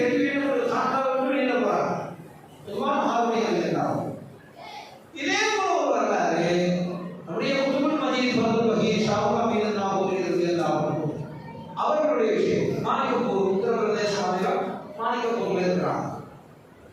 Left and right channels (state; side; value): identical; both; correlation 1.00